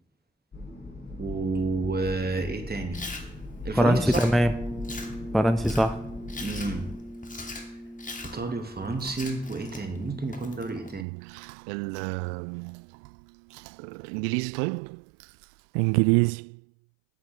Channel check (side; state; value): left; drops out; at 11.1 s